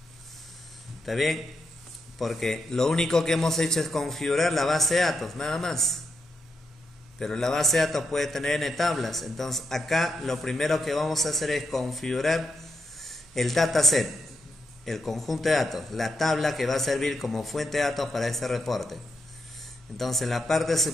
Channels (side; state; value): both; normal; correlation 0.83